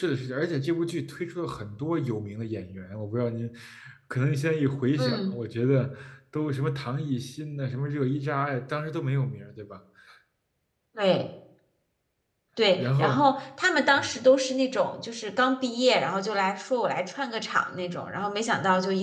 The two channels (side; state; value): both; identical; correlation 1.00